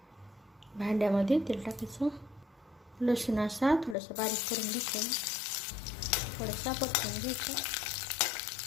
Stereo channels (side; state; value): right; drops out; at 4.0 s